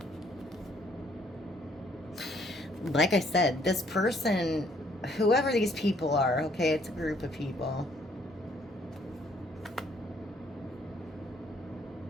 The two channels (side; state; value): both; normal; correlation 0.65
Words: Like I said, this person, whoever these people are, okay, it's a group of people.